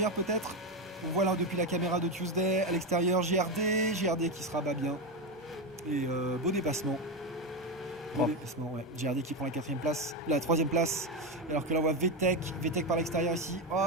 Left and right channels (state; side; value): normal; both; correlation 0.12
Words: peut-être. On voit là depuis la caméra de Tuesday, à l'extérieur GRD qui se rabat bien. Et beau dépassement. GRD qui prend la 4ème place, la 3ème place. Alors que là on voit VTEC par l'extérieur ici.